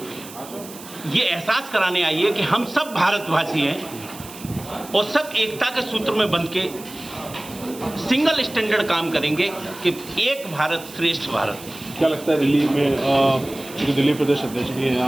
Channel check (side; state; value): right; noise; hiss, 16 dB below the sound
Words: ये एहसास कराने आई है कि हम सब भारतवासी हैं और सब एकता के सूत्र में बंध के सिंगल स्टैंडर्ड काम करेंगे कि एक भारत श्रेष्ठ भारत। क्या लगता है दिल्ली में, चूँकि दिल्ली प्रदेश अध्यक्ष भी हैं